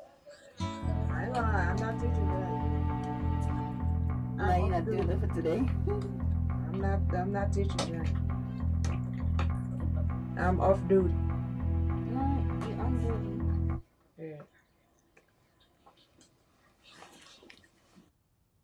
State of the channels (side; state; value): both; identical; correlation 1.00